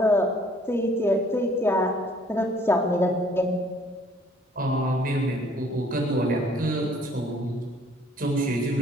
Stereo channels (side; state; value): both; normal; correlation 0.59